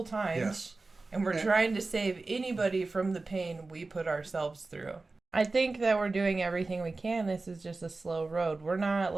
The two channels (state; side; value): quieter; left; 3.5 dB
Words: times. Yes. And we're trying to save anybody from the pain we put ourselves through. I think that we're doing everything we can. This is just a slow road. We're not